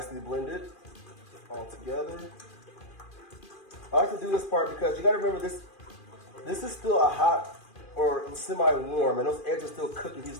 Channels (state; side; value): late; right; 2.4 ms